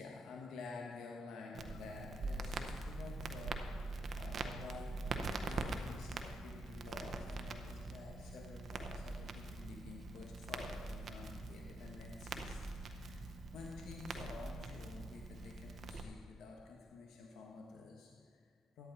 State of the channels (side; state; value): both; normal; correlation 0.79